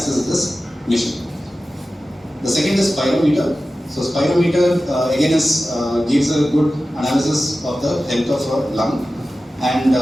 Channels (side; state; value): both; normal; correlation 0.95